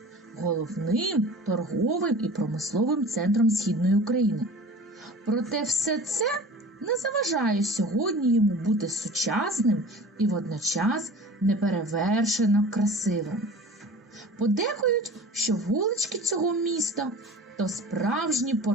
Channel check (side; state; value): both; normal; correlation 0.41